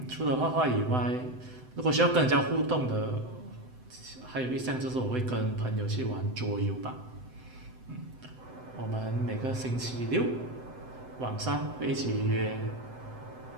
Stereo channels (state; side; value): late; left; 7.9 ms